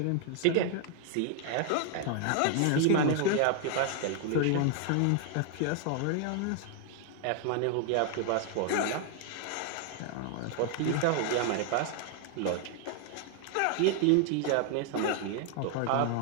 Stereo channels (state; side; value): different; both; correlation 0.00